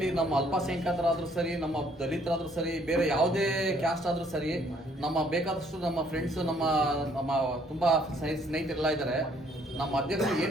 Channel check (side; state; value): both; normal; correlation 0.64